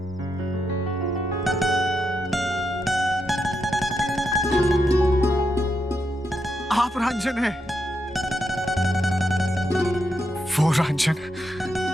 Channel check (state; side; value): normal; both; correlation 0.83